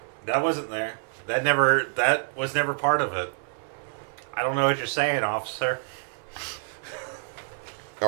That wasn't there. That was never part of it. I don't know what you're saying, officer. All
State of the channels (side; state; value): left; silent; 56 dB below the other